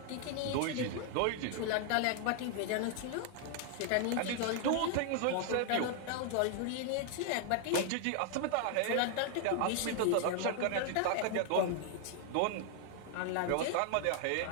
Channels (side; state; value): both; different; correlation 0.00